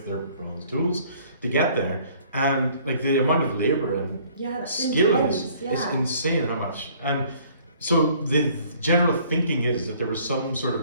their bronze tools to get there, and like the amount of labor and skill is insane. How much? And so the general thinking is that there was some sort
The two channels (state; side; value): inverted; both; correlation -0.57